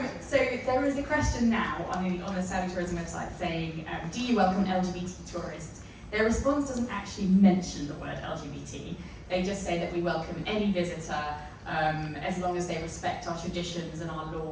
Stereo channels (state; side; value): identical; both; correlation 1.00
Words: So there is a question now on the Saudi Tourism website saying, do you welcome LGBT tourists? Their response doesn't actually mention the word LGBT. They just say that we welcome any visitor as long as they respect our traditions and our